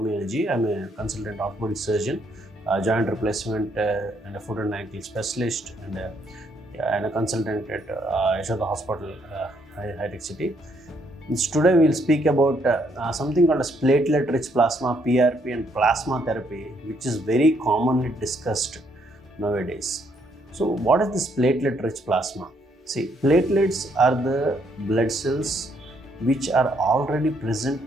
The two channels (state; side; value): normal; both; correlation 0.71